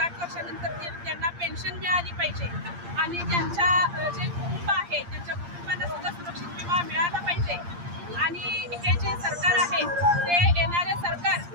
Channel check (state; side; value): late; left; 8.6 ms